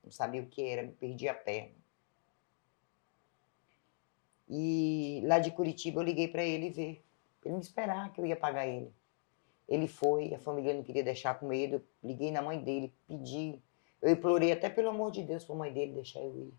Não sabia o que era, me perdi a perna. E lá de Curitiba eu liguei para ele ver. Pra ele me esperar que eu ia pagar ele. Ele foi, a família não queria deixar com medo. Eu liguei na mãe dele, pedi. Eu implorei até pelo amor de Deus para a mãe dele deixar eu ir.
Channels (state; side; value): silent; right; digital silence